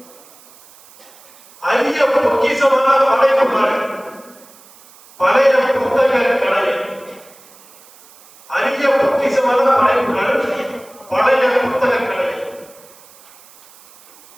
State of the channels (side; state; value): right; noise; hiss, 25 dB below the sound